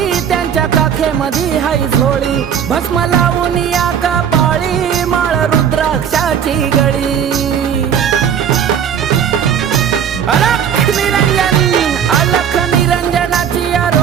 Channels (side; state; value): left; quieter; 8.4 dB